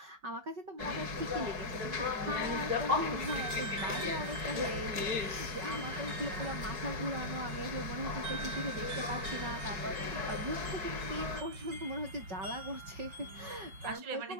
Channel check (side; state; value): left; late; 5.4 ms